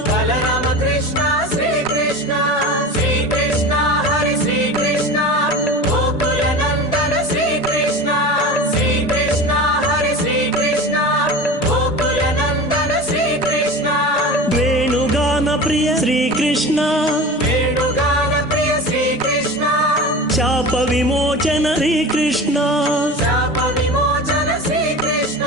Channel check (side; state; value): both; normal; correlation 0.32